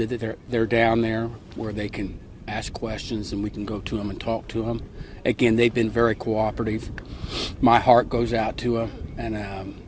that they're down there where they can ask questions, and we can go to them and talk to them. Again, they've been very cooperative. My heart goes out to them, and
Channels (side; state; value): both; identical; correlation 1.00